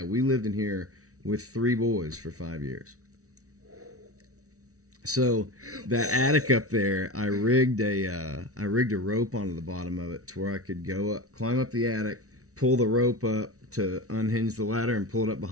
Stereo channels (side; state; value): left; late; 0.65 ms